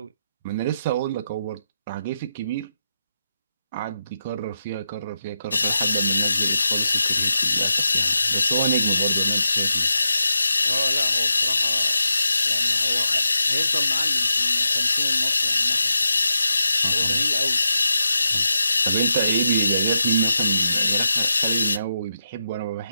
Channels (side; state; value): both; inverted; correlation -0.87